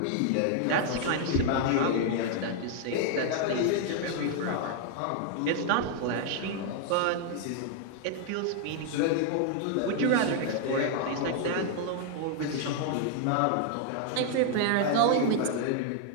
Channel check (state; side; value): different; both; correlation 0.00